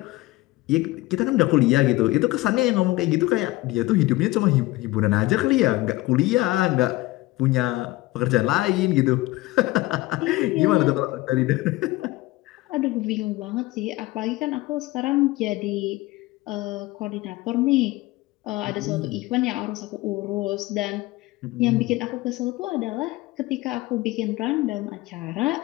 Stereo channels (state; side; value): quieter; right; 19.4 dB